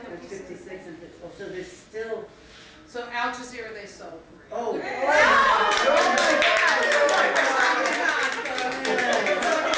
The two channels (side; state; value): both; identical; correlation 1.00